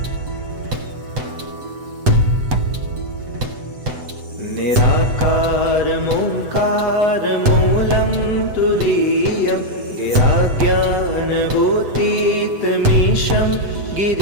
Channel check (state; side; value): late; left; 8.0 ms